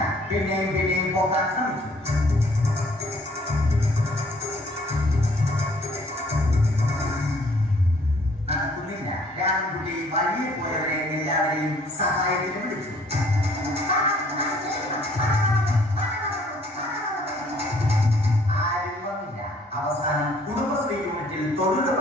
പിന്നെയും പൊക്കാൻ ശ്രമിച്ചു. നടക്കുന്നില്ല. രാമൻകുട്ടി വഴിയെ പോയവരെ എല്ലാവരെയും സഹായത്തിന് വിളിച്ചു. ആരും വന്നില്ല. അവസാനം കുടുംബശ്രീ യൂണിറ്റിൽ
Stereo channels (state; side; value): normal; both; correlation 0.60